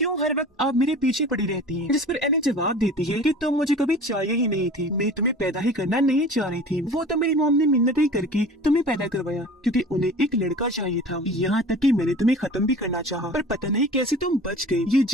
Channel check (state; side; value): normal; both; correlation 0.41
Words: हर वक्त आप मेरे पीछे पड़ी रहती हैं? जिस पर एनी जवाब देती है कि तुम मुझे कभी चाहिए ही नहीं थी, मैं तुम्हें पैदा ही करना नहीं चाह रही थी, वो तो मेरी मॉम ने मिन्नतें करके तुम्हें पैदा करवाया क्योंकि उन्हें एक लड़का चाहिए था, यहाँ तक कि मैंने तुम्हें खत्म भी करना चाहा, पर पता नहीं कैसे तुम बच गई। ये